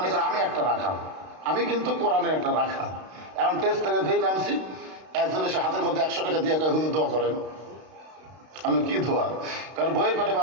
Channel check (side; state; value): left; late; 32 ms